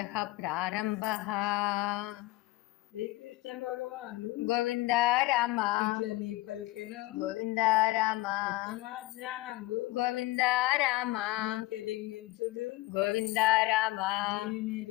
प्रारम्भः। శ్రీకృష్ణ భగవానుడు గోవింద రామ ఇట్లని పలికెను. గోవింద రామ ఉత్తమాజ్ఞానంబు గోవింద రామ తెలింగించుడు గోవింద రామ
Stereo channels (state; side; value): quieter; right; 18.7 dB